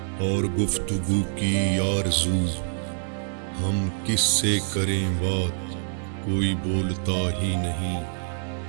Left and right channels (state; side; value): silent; left; digital silence